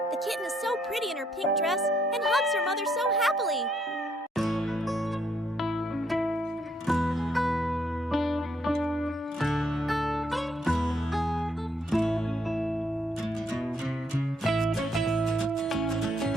The kitten is so pretty in her pink dress and hugs her mother so happily.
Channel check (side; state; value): both; normal; correlation 0.72